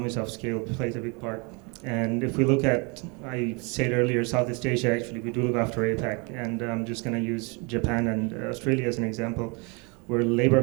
of scale plays a big part. And if we look at, I said earlier, Southeast Asia, actually, we do look after APAC, and I'm just going to use Japan and Australia as an example, where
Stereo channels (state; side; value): quieter; left; 31.2 dB